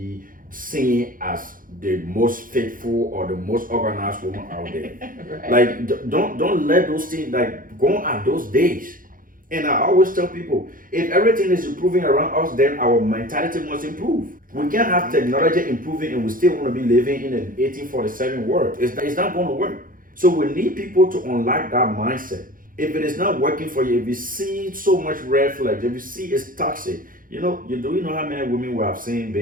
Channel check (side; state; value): left; late; 0.40 ms